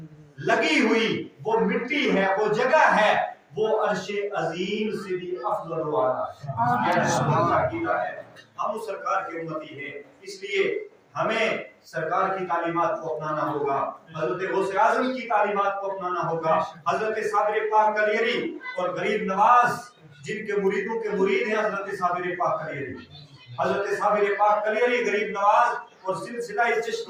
لگی ہوئی وہ مٹی ہے، وہ جگہ ہے، وہ عرش عظیم سے بھی افضل و اعلیٰ ہے۔ یہ ہمارا عقیدہ ہے، ہم اس سرکار کے امتی ہیں، اس لیے ہمیں سرکار کی تعلیمات کو اپنانا ہوگا، حضرت غوث اعظم کی تعلیمات کو اپنانا ہوگا، حضرت صابر پاک کلیری اور غریب نواز جن کے مریدوں کے مرید ہیں حضرت صابر پاک کلیری، حضرت صابر پاک کلیری، غریب نواز اور سلسلہ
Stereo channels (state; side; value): identical; both; correlation 1.00